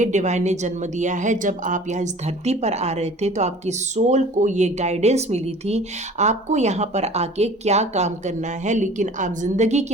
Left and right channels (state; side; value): normal; both; correlation 0.46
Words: डिवाइन ने जन्म दिया है। जब आप यहाँ इस धरती पर आ रहे थे तो आपकी सोल को ये गाइडेंस मिली थी आपको यहाँ पर आके क्या काम करना है, लेकिन आप जिंदगी